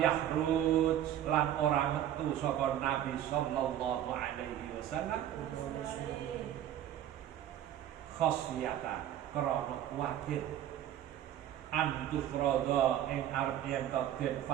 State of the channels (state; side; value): quieter; left; 11.4 dB